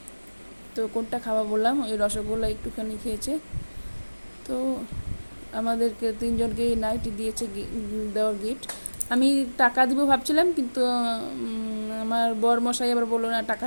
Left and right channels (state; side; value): inverted; both; correlation -1.00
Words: তো কোনটা খাওয়া বললাম, ওই রসগোল্লা একটুখানি খেয়েছে। তো আমাদেরকে তিনজনকে নাইটি দিয়েছে দেওয়ার গিফট। আমি টাকা দিব ভাবছিলাম, কিন্তু আমার বরমশাই আবার বললো না টাকা